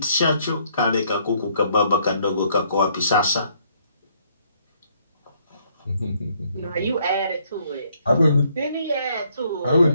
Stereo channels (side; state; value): both; inverted; correlation -0.68